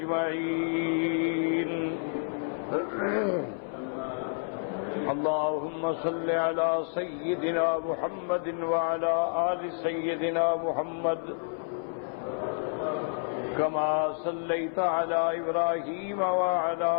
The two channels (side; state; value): right; silent; 58 dB below the other